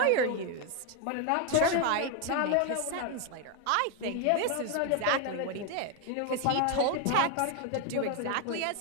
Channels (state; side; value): different; both; correlation 0.01